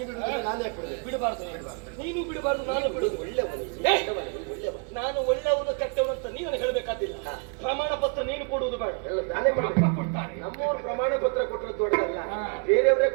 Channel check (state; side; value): quieter; left; 37.5 dB